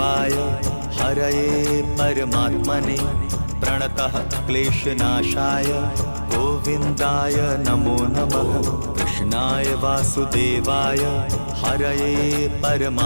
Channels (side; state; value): both; inverted; correlation -1.00